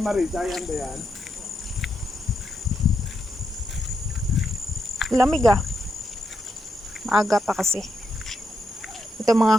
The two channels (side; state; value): both; normal; correlation 0.83